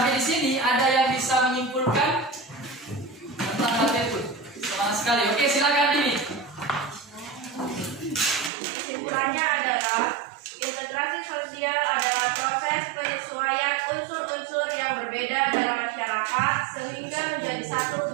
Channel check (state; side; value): drops out; left; at 8.5 s